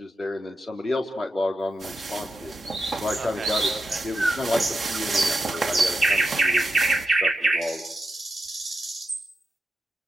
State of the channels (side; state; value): both; normal; correlation 0.86